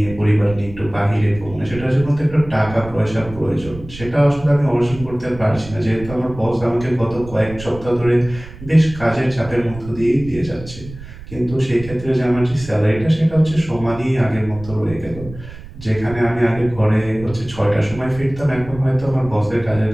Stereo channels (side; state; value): right; noise; rumble, 15 dB below the sound